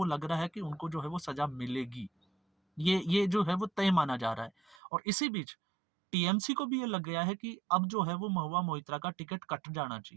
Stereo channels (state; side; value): drops out; left; at 4.8 s